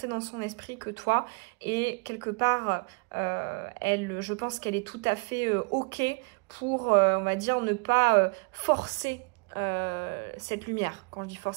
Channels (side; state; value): left; quieter; 33.3 dB